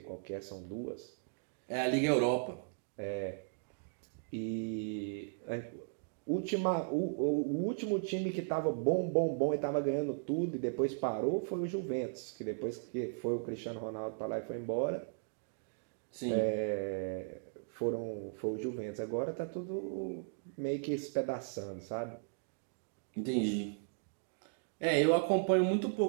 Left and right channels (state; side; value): silent; left; digital silence